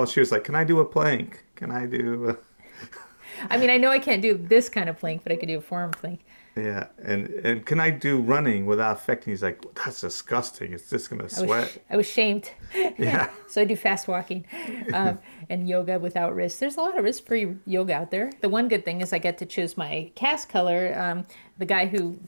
she was like, can I do a plank? Can I do I mean, I know I can't do this kind of plank, but I could do a forearm plank. Yeah, and can I do running without affecting? He's like, that's disgusting. It's just going to sweat. I was shamed. Yeah. So I do fast walking and yoga without wrists. There's a lot of wrist-free yoga out there. The one good thing is I get to choose my cast color. The guy who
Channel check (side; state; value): both; inverted; correlation -1.00